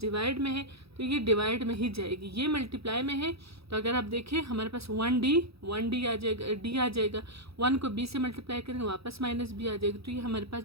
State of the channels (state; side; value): late; left; 0.77 ms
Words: डिवाइड में है, तो ये डिवाइड में ही जाएगी, ये मल्टीप्लाई में है। तो अगर आप देखें हमारे पास 1d आ जाएगा, डी आ जाएगा, 1 को b से मल्टीप्लाई करेंगे वापस माइनस b आ जाएगा, तो ये हमारे पास